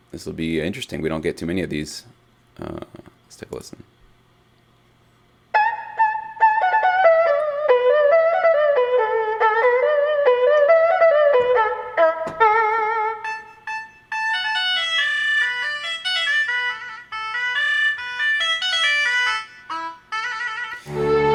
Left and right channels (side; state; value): both; identical; correlation 1.00